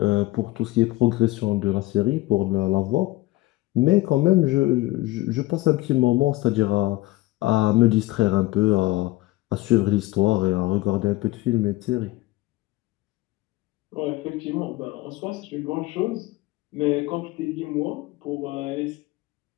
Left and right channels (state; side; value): quieter; right; 18.7 dB